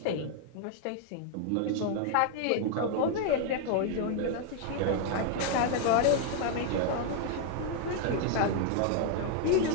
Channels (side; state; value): both; different; correlation 0.00